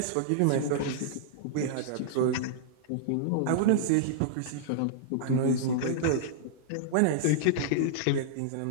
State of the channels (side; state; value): both; different; correlation -0.02